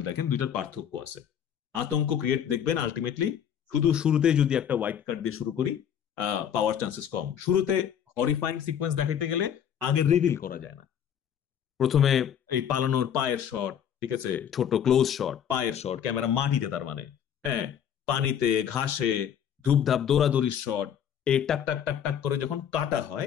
দেখেন, দুইটার পার্থক্য আছে। আতঙ্ক ক্রিয়েট দেখবেন আলটিমেটলি শুধু শুরুতে যদি একটা ওয়াইড কাট দিয়ে শুরু করি, পাওয়ার চান্সেস কম। শুরুতে হরিফাইং সিকোয়েন্স দেখাইতে গেলে আগে রিভিল করা যায় না। প্রথমে এই পালানোর পায়ের শট, ঠিক আছে, ছোট ক্লোজ শট, পায়ের শট, ক্যামেরা মাটিতে, তার মানে হ্যাঁ, পানিতে, ঘাসে, ধূপধাপ দৌড়াদৌড়ির শট, এই টাক টাক টাক টাক করে যখন কাটা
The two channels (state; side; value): quieter; right; 8.9 dB